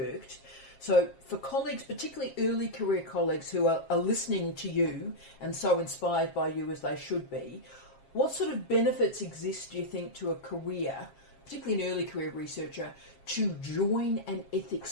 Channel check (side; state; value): right; late; 7.4 ms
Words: So for colleagues, particularly early career colleagues who are listening to you and so inspired by you as they should be, what sort of benefits exist, do you think, to a career, particularly an early career researcher, to join an